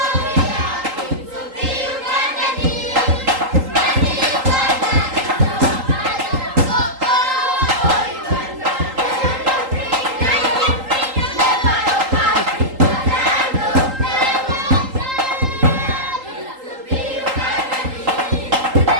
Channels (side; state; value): left; late; 3.8 ms